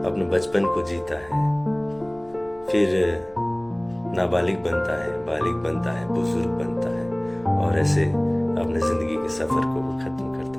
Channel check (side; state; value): left; noise; rumble, 28 dB below the sound